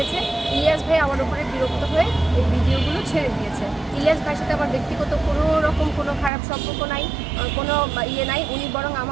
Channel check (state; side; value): drops out; left; at 6.3 s